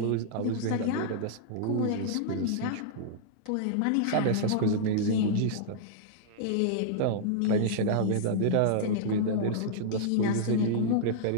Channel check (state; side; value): different; both; correlation -0.02